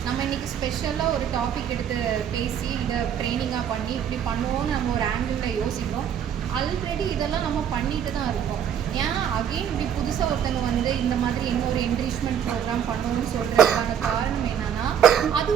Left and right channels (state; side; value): quieter; left; 8.8 dB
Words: நம்ம இன்றைக்கி ஸ்பெஷலாக ஒரு டாபிக் எடுத்து பேசி இதை ட்ரைனிங்காக பண்ணி இப்படி பண்ணுவோன்னு நம்ம ஒரு ஆங்கிளில் யோசிக்கிறோம். ஆல்ரெடி இதெல்லாம் நம்ம பண்ணிட்டு தான் இருக்கோம். ஏன் அகெயின் இப்படி புதுசாக ஒருத்தங்க வந்து இந்த மாதிரி இன்னொரு என்ரிச்மெண்ட் ப்ரோக்ராம் பண்ணணும்னு சொல்கிறதுக்கான காரணம் என்னென்னா,